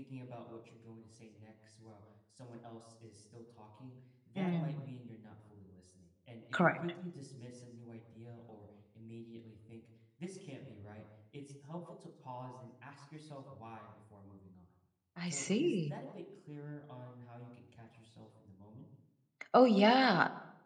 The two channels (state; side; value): identical; both; correlation 1.00